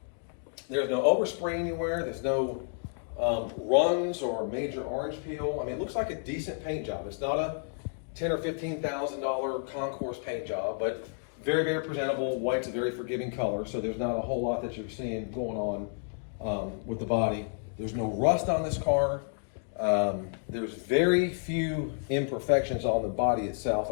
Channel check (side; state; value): right; silent; digital silence